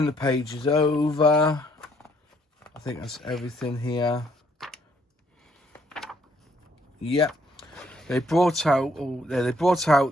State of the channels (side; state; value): both; normal; correlation 0.68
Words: the pages over, I think that's everything here. Yep. They brought